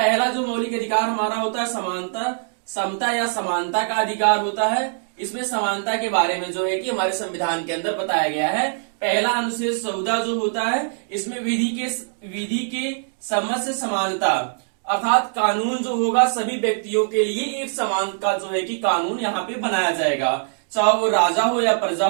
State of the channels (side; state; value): left; silent; digital silence